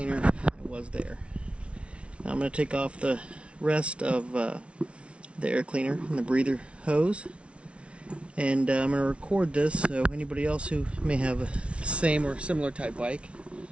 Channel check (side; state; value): left; late; 0.060 ms